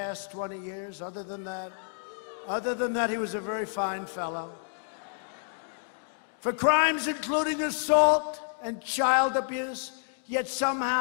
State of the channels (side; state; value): right; silent; digital silence